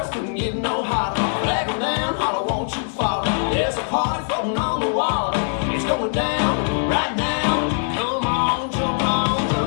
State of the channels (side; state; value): right; silent; digital silence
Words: couldn't get no hotter. Flag 'em down, holler, won't you follow? There's a party floating on the water. It's going down right now. Come on, jump on the